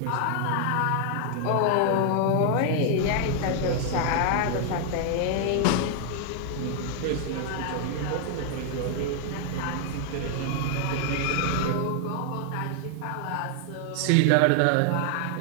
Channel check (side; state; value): both; different; correlation 0.00